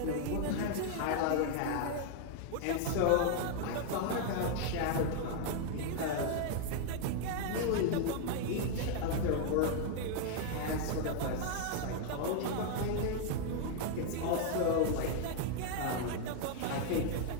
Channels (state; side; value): different; both; correlation 0.00